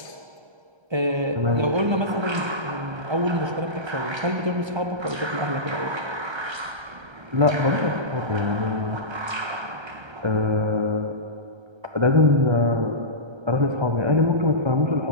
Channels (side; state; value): left; late; 1.3 ms